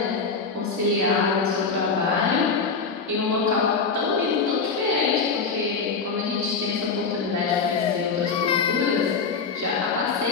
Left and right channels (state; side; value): quieter; right; 5.0 dB